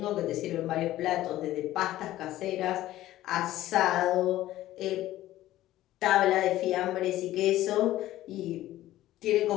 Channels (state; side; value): quieter; right; 14.8 dB